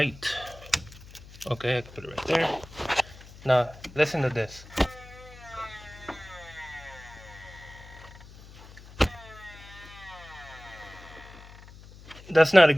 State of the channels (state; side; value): noise; left; hum, 19 dB below the sound